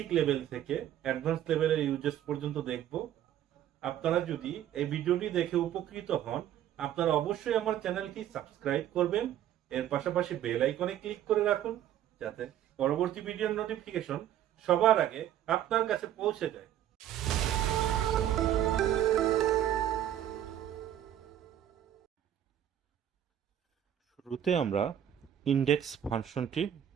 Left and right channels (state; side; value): quieter; left; 11.1 dB